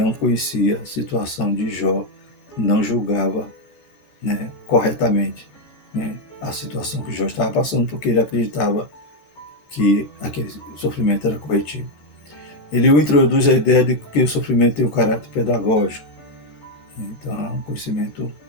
conhecia a situação de Jó, não julgava, né, corretamente, né, a situação que Jó estava passando, porque ele acreditava que aquele sofrimento era corretivo. Ele introduz a ideia de que o sofrimento tem um caráter pedagógico. Então é um conhecimento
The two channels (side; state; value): right; late; 13 ms